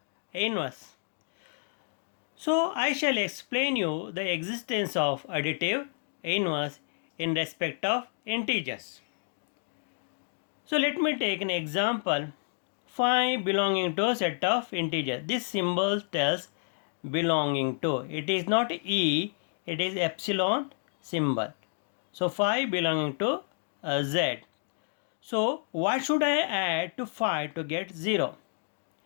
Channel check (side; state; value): right; silent; digital silence